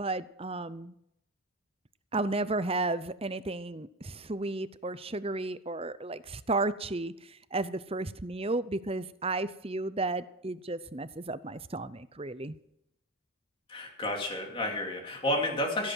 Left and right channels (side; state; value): both; normal; correlation 0.19